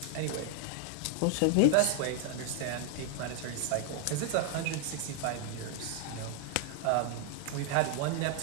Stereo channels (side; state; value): both; different; correlation 0.00